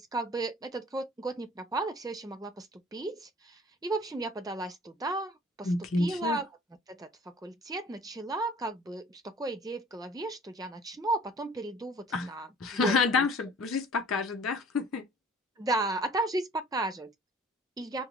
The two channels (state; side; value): normal; both; correlation 0.51